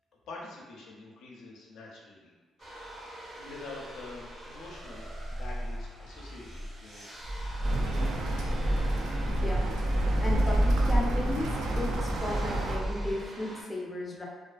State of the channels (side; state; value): both; normal; correlation 0.91